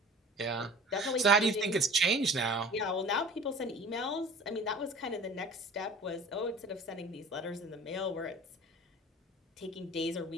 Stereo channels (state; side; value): normal; both; correlation 0.43